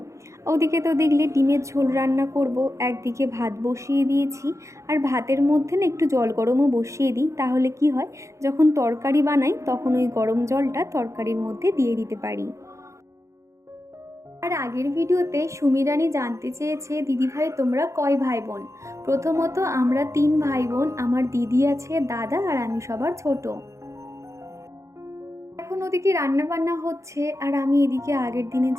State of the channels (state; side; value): late; left; 0.15 ms